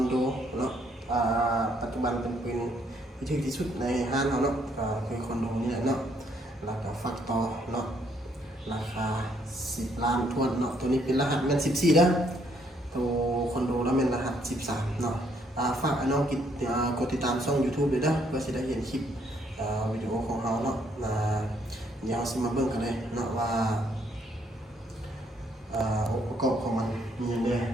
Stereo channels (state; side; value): normal; both; correlation 0.69